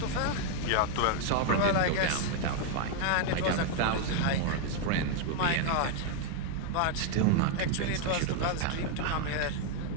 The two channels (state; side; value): different; both; correlation 0.00